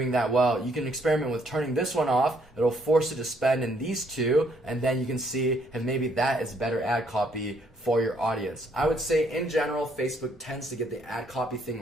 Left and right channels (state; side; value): normal; both; correlation 0.68